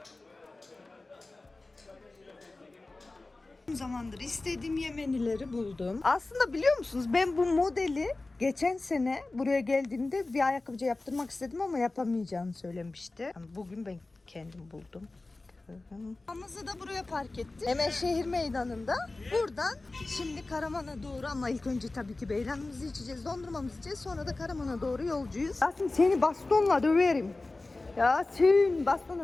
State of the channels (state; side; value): quieter; right; 3.2 dB